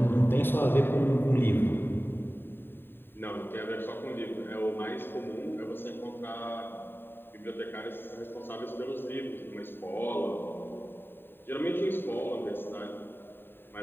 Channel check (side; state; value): right; late; 0.10 ms